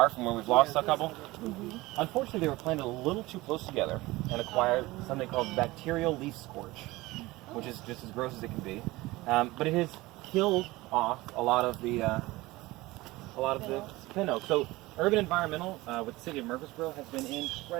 from where we've lost a couple. Unfortunately, they were planted a little too close together and acquired something called bacterial leaf scorch, which is just as gross as it can be. But it has killed off a lot of the pin oak. So Urban Environmental with the city of Murfreesboro has been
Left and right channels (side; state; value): left; quieter; 20.0 dB